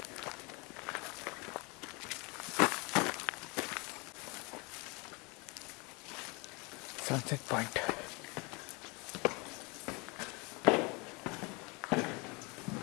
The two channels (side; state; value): right; quieter; 28.6 dB